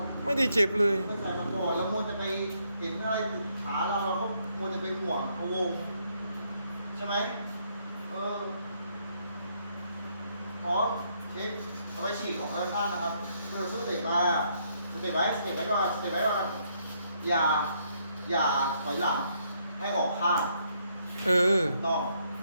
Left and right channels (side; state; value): both; inverted; correlation -0.73